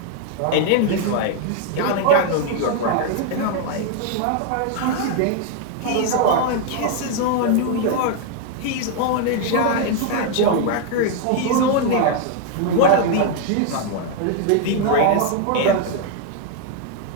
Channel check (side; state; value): both; different; correlation 0.00